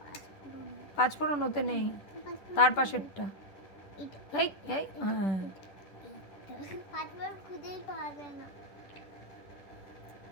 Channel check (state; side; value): late; right; 10 ms